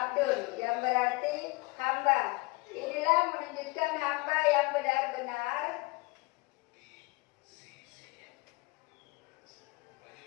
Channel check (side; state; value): right; quieter; 24.9 dB